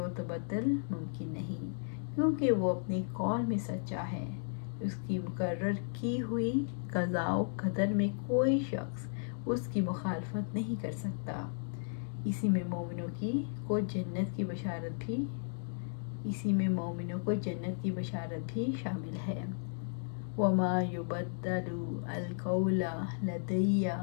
تبدل ممکن نہیں، کیونکہ وہ اپنے قول میں سچا ہے، اس کی مقرر کی ہوئی قضاء و قدر میں کوئی شخص اس کی مخالفت نہیں کر سکتا۔ اسی میں مومنوں کو جنت کی بشارت بھی شامل ہے۔ وَمَا يُبَدَّلُ الْقَوْلَ لَدَيَّ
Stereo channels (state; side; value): silent; right; digital silence